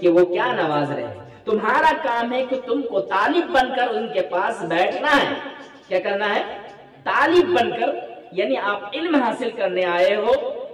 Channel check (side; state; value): both; identical; correlation 1.00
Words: کہ وہ کیا نواز رہے ہیں. تمہارا کام ہے کہ تم کو طالب بن کر ان کے پاس بیٹھنا ہے. کیا کرنا ہے؟ طالب بن کر, یعنی آپ علم حاصل کرنے آئے ہو,